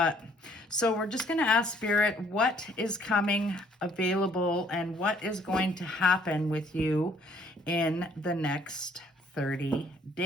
so we're just going to ask Spirit what is coming available and what is going to happen with you in the next 30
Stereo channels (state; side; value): normal; both; correlation 0.62